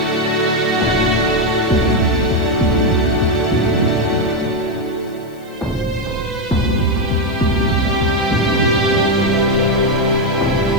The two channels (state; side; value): noise; left; hiss, 28 dB below the sound